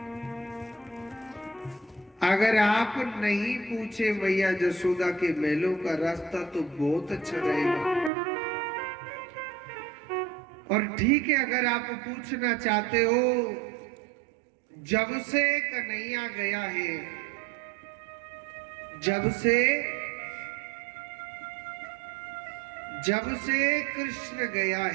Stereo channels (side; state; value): left; drops out; at 8.1 s